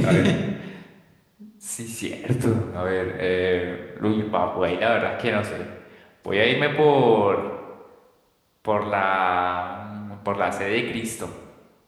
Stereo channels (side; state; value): both; identical; correlation 1.00